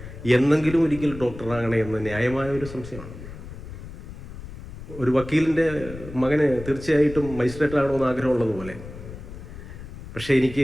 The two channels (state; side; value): noise; left; rumble, 13 dB below the sound